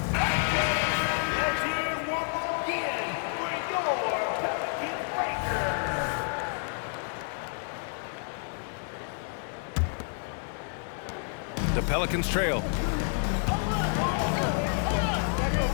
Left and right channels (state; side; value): silent; right; 56 dB below the other